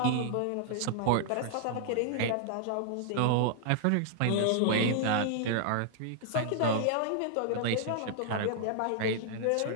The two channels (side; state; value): both; different; correlation -0.01